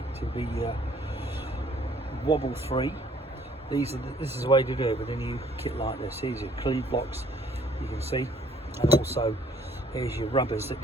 to be wobble free, this is the way to do it with a new kit like this. Here's your cleave blocks, you can see, and also here's your rubbers that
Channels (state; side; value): normal; both; correlation 0.60